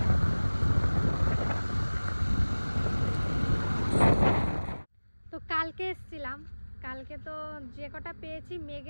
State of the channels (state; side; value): inverted; both; correlation -1.00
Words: তো কালকে এসেছিলাম, কালকে তো যে কটা পেয়েছি